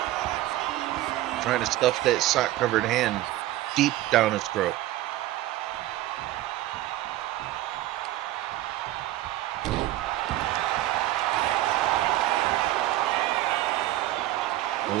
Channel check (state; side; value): quieter; left; 15.2 dB